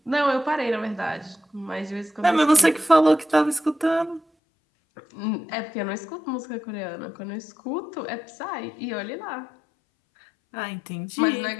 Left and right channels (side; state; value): right; drops out; at 4.2 s